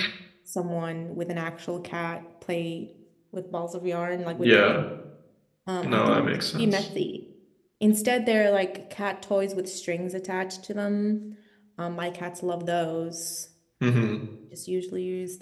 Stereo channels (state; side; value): identical; both; correlation 1.00